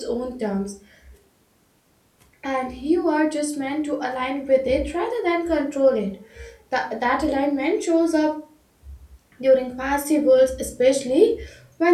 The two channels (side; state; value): both; identical; correlation 1.00